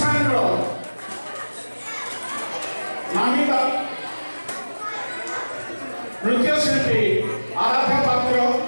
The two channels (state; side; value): inverted; both; correlation -1.00